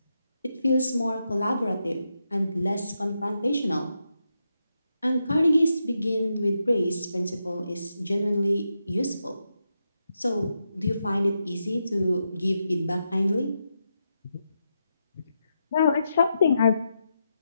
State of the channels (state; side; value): inverted; both; correlation -0.85